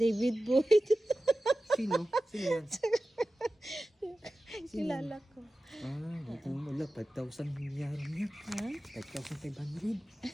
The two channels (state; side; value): normal; both; correlation 0.95